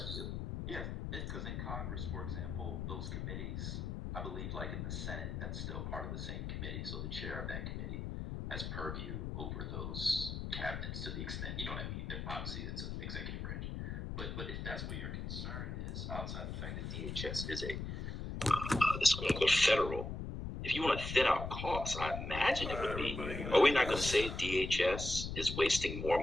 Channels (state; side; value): noise; left; rumble, 4 dB below the sound